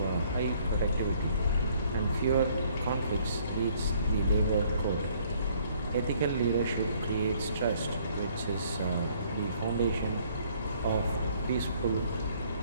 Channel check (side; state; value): both; inverted; correlation -0.62